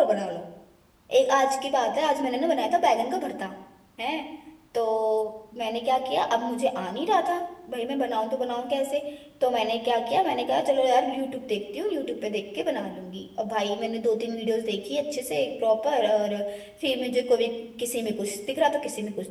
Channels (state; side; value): identical; both; correlation 1.00